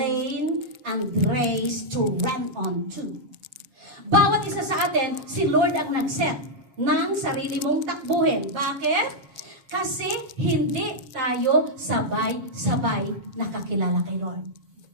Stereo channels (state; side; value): late; left; 7.6 ms